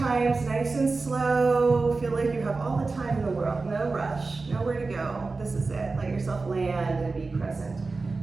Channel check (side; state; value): left; quieter; 3.9 dB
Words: nice and slow. Feel like you have all the time in the world. No rush, nowhere to go. This is it. Let yourself land and be present.